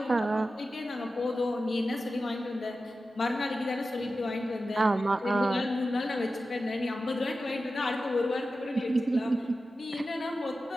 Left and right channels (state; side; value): normal; both; correlation 0.93